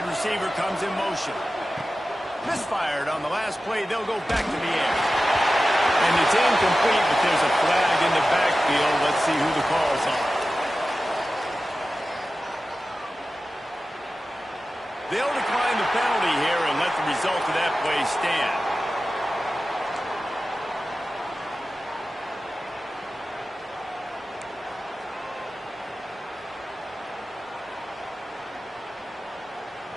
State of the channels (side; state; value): both; normal; correlation 0.94